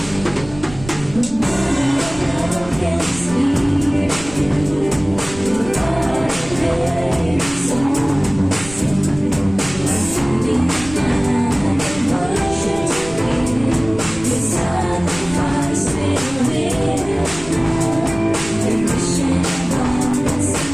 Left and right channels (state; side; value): noise; right; rumble, 15 dB below the sound